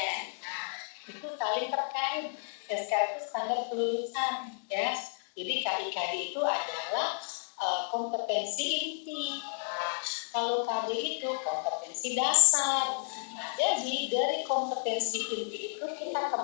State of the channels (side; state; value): right; silent; digital silence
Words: Nah, itu saling terkait. SKL itu standar kelulusan, ya. Jadi KIKD itu adalah kompetensi inti. Nah, kalau KD itu kompetensi dasar. Nah, jadi dari kompetensi inti itu kita